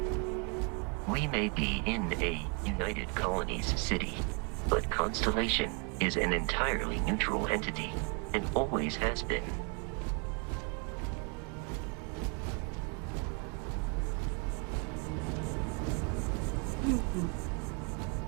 We may be in a United Colonies city, but Constellation is an entirely neutral entity, and always has been.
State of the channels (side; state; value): left; quieter; 34.6 dB